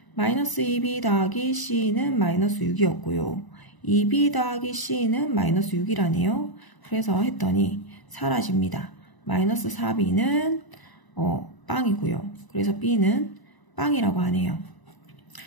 마이너스 2b 더하기 c는 마이너스 6이었고요. 2b 더하기 c는 마이너스 6이라네요. 그래서 했더니 사라집니다. 마이너스 4b는 빵이고요. 그래서 b는 빵이라고 하네요.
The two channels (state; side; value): late; right; 1.0 ms